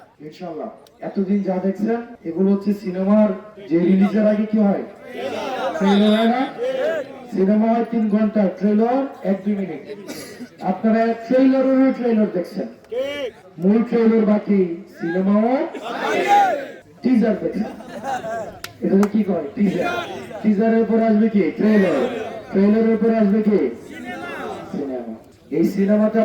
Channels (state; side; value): identical; both; correlation 1.00